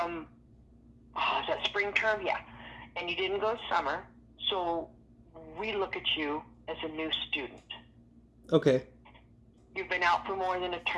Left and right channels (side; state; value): both; identical; correlation 1.00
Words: is that spring term? Yeah. And you didn't go summer. So we look at you as a new student. Okay. You've been out not for more than a